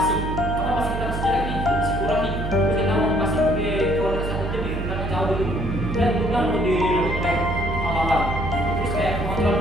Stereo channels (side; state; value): right; noise; hum, 4 dB below the sound